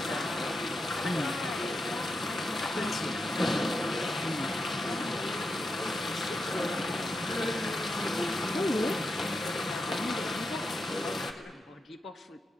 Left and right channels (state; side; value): normal; both; correlation 0.86